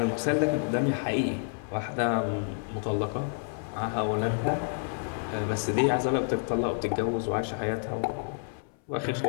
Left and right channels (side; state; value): right; silent; 58 dB below the other